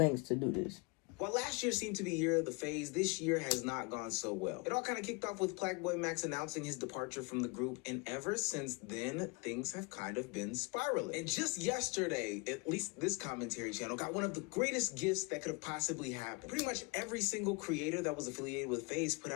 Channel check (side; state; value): right; quieter; 28.8 dB